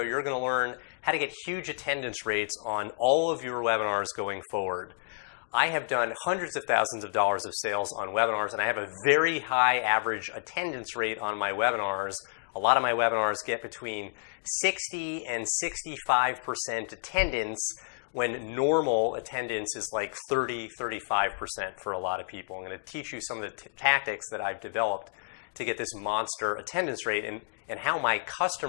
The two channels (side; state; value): right; silent; digital silence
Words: you're going to learn how to get huge attendance rates on all of your webinars going forward. I have done hundreds of thousands of dollars of sales on webinars, and I have a very high average attendance rate on my webinars. A lot of my webinars get between 60 and 65% attendance when normal attendance is like 30-35% for a lot of people. I'm going to teach you some of the tactics that I've developed to get this monster attendance rate and how my